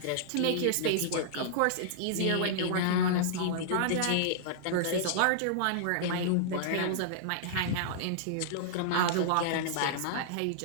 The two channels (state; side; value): different; both; correlation -0.01